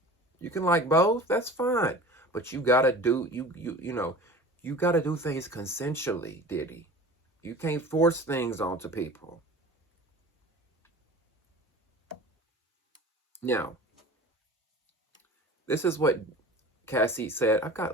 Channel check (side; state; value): both; normal; correlation 0.40